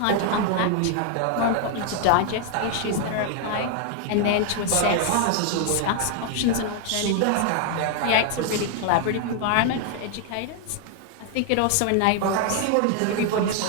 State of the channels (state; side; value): different; both; correlation 0.00